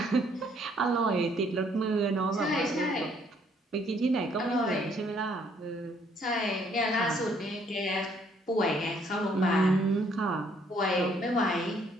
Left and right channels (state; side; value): normal; both; correlation 0.65